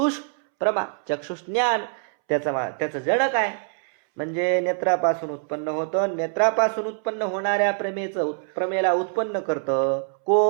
प्रमा, चक्षुष ज्ञान, त्याचं जनक आहे. म्हणजे नेत्रापासून उत्पन्न होतं. नेत्रापासून उत्पन्न होणाऱ्या प्रमेला उत्पन्न करतं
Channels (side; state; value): left; silent; 62 dB below the other